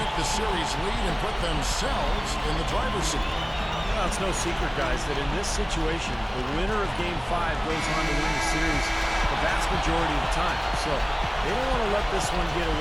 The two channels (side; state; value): both; identical; correlation 1.00